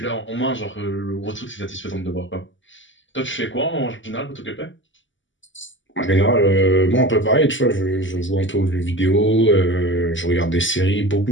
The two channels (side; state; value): right; late; 0.55 ms